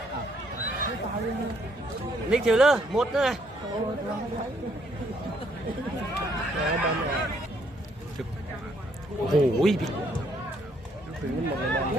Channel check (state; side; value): normal; both; correlation 0.69